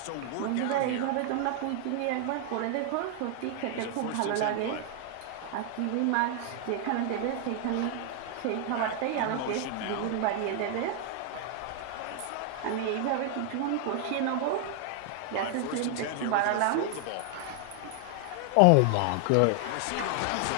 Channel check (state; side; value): different; both; correlation 0.00